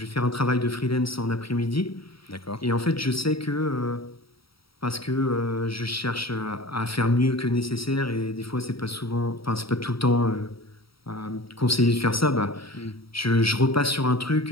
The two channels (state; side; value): late; right; 0.75 ms